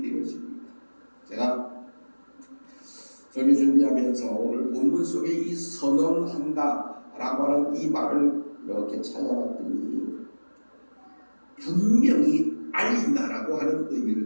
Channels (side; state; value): both; inverted; correlation -1.00